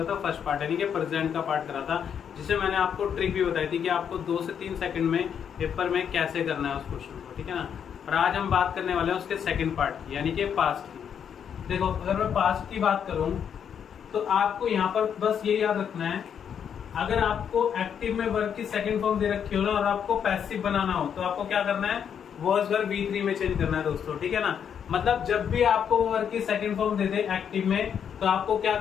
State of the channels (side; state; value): right; quieter; 8.0 dB